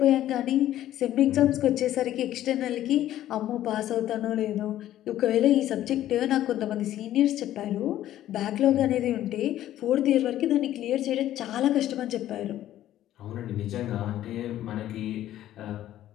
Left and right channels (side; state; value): right; quieter; 12.9 dB